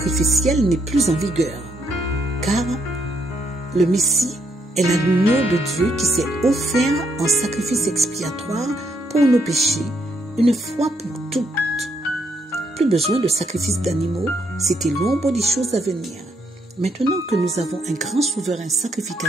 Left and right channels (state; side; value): normal; both; correlation 0.74